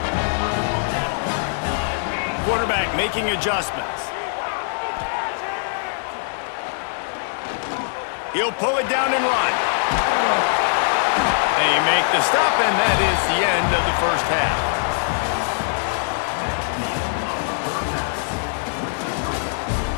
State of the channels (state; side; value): silent; right; digital silence